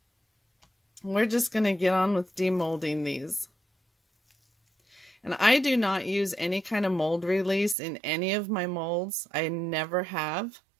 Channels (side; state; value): left; drops out; at 7.8 s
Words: we're just going to get on with demolding these. And I do not use any kind of mold release in any of my molds. I never have.